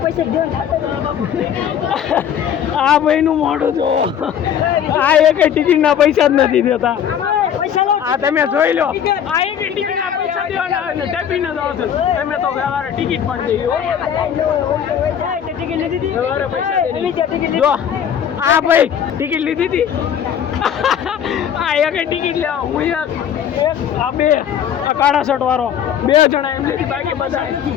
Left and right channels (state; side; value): quieter; right; 8.9 dB